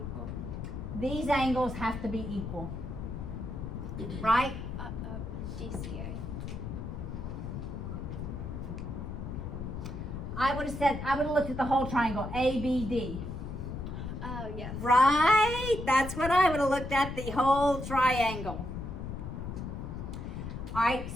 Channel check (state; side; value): noise; left; rumble, 6 dB below the sound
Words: These angles have to be equal. Right? GCA. I would have looked at the whole triangle, ABD. Oh, yes. Right? That's what I would have looked at, the whole triangle. All right,